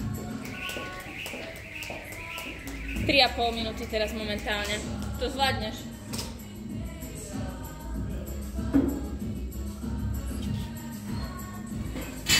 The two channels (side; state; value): both; identical; correlation 1.00